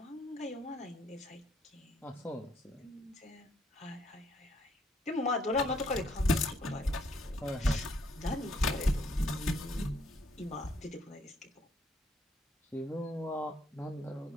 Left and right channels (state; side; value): normal; both; correlation 0.69